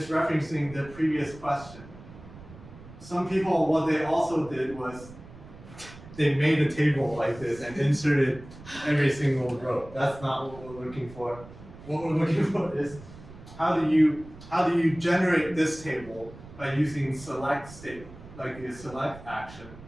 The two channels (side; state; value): right; noise; rumble, 18 dB below the sound